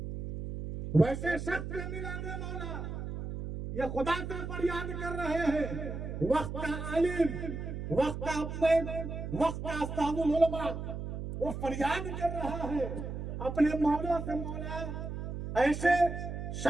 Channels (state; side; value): noise; right; hum, 6 dB below the sound